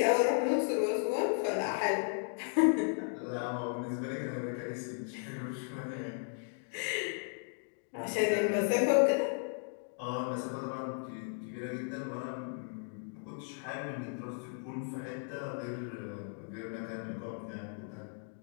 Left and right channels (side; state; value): right; silent; 54 dB below the other